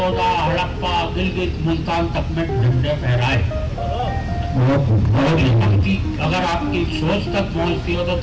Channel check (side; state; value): both; identical; correlation 1.00